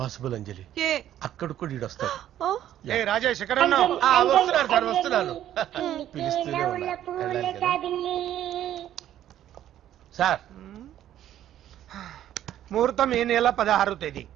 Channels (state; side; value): quieter; left; 11.7 dB